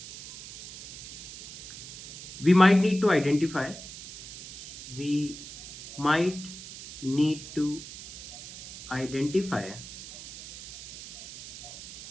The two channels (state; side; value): noise; right; hiss, 13 dB below the sound